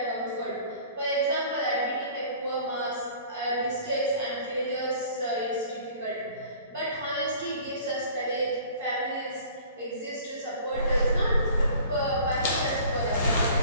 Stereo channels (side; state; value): both; inverted; correlation -0.48